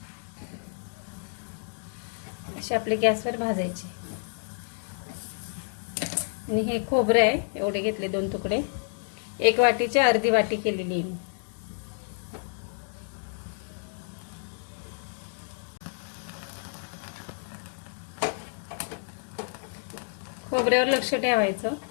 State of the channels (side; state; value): right; silent; digital silence